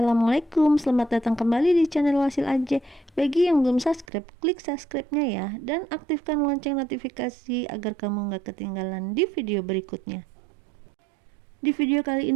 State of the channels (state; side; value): drops out; left; at 4.0 s